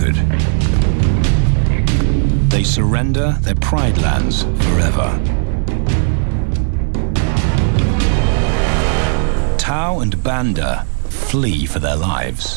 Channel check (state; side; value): silent; left; digital silence